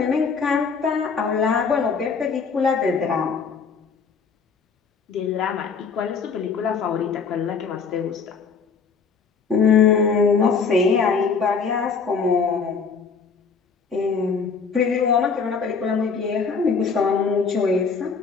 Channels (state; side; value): quieter; right; 5.4 dB